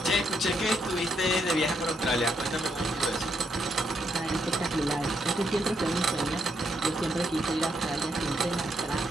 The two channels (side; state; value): both; normal; correlation 0.77